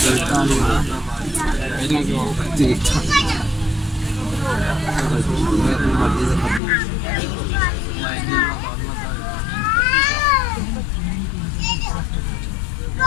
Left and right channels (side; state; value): right; drops out; at 6.6 s